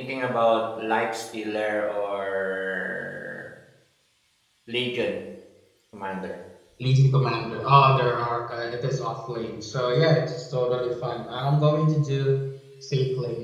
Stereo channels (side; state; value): both; identical; correlation 1.00